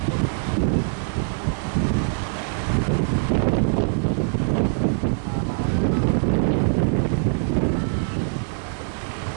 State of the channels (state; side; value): silent; left; digital silence